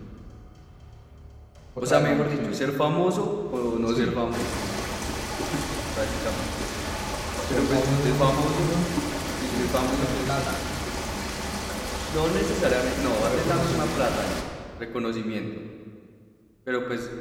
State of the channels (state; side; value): identical; both; correlation 1.00